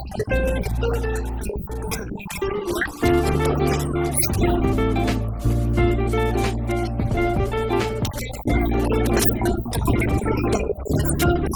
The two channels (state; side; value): identical; both; correlation 1.00